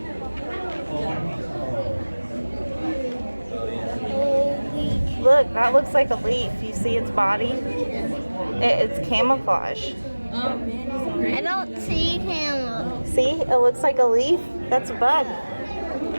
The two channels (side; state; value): both; inverted; correlation -1.00